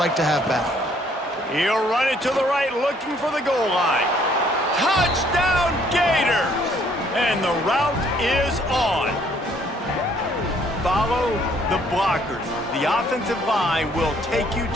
to have back. He'll run it to the right, looking for the goal line. Touchdown, Gators! And the route is on. Follow the blockers. The offensive line will take you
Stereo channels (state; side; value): normal; both; correlation 0.64